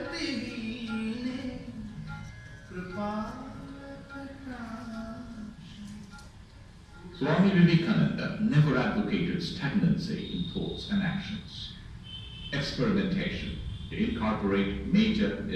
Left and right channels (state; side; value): identical; both; correlation 1.00